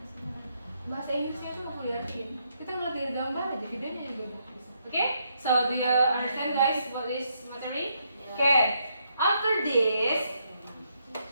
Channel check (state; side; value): inverted; both; correlation -0.76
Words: bahasa Inggrisnya itu mau diartiin. Kita ngeliat dari gambar aja, videonya juga bagus. Okay? So do you understand guys what is materi? Okay. After this,